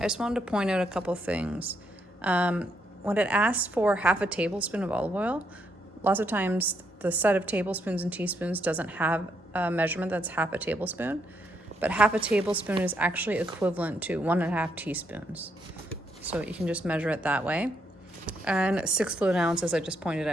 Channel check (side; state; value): both; normal; correlation 0.76